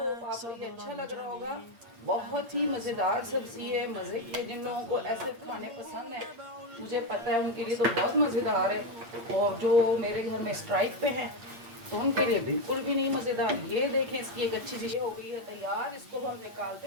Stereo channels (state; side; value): late; left; 8.7 ms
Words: आपको ये अच्छा लग रहा होगा। बहुत ही मज़ेदार सब्जी है, मज़े की है। जिन लोगों को ऐसे खाने पसंद है मुझे पता है उनके लिए तो बहुत मज़ेदार है, और जो मेरे घर में स्ट्राइक पे हैं तो उनके लिए बिल्कुल भी नहीं मज़ेदार। ये देखें, इसकी एक अच्छी चीज़ हो गई है तैयार। इसको हम निकालते